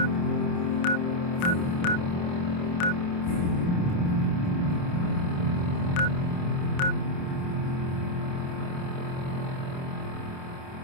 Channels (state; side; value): late; right; 28 ms